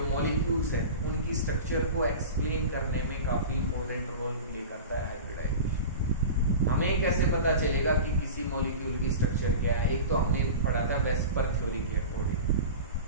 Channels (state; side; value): inverted; both; correlation -0.32